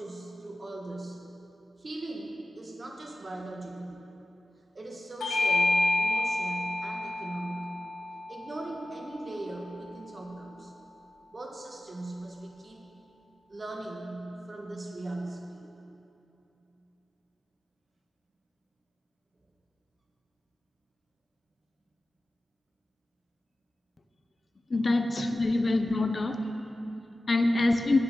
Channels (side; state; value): both; normal; correlation 0.95